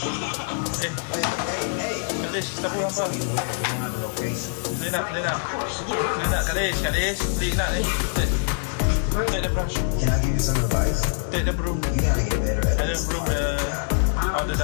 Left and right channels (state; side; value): silent; right; digital silence